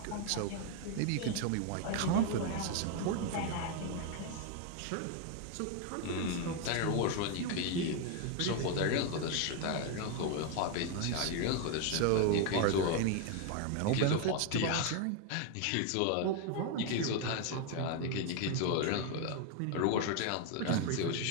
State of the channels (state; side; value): different; both; correlation 0.01